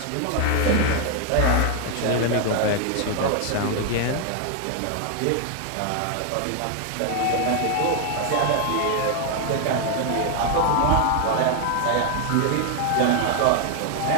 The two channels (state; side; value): different; both; correlation 0.01